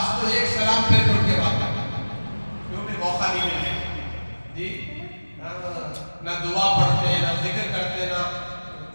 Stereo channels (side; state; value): both; inverted; correlation -1.00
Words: تو ایک سلام پھر اٹھ کے بات کرتے ہیں کیونکہ موقع نہیں ملے جی. نہ دعا پڑھتے، نہ ذکر کرتے، نہ